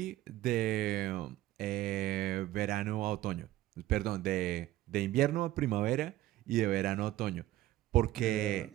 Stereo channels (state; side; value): quieter; left; 15.1 dB